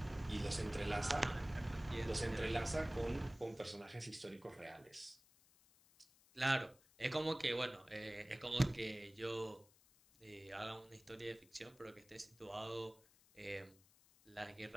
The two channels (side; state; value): left; noise; hiss, 27 dB below the sound